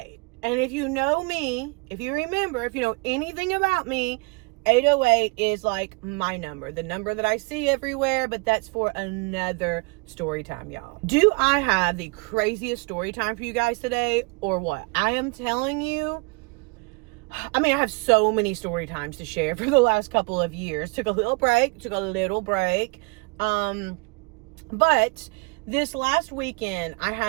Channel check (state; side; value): quieter; left; 29.9 dB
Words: And if you know me, if you remember, if you know anything about me, 8:08 is like my number, the number that I see everywhere, but that's for another story time, y'all. Do I have the craziest story time for you guys today or what? I am telling you, I mean, I have so many story times to share for the last couple of years. Took a little break. But this last weekend, I